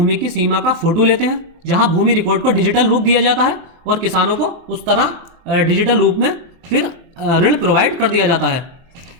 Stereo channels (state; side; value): late; left; 24 ms